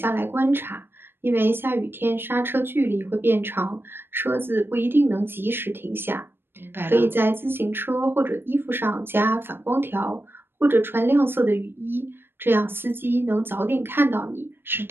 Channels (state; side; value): late; left; 0.10 ms